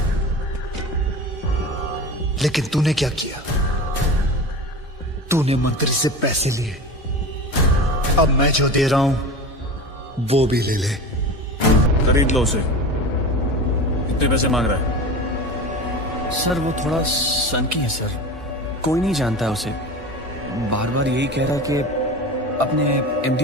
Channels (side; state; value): both; normal; correlation 0.31